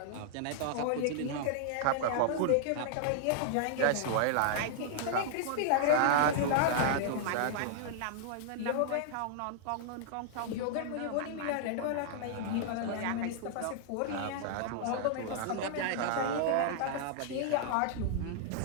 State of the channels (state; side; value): different; both; correlation -0.01